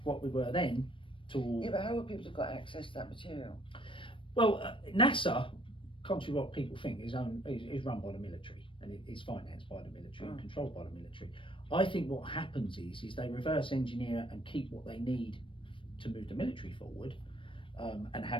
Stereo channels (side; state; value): right; late; 0.25 ms